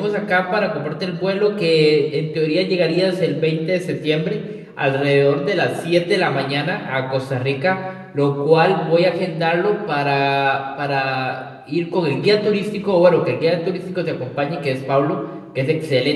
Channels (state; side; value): identical; both; correlation 1.00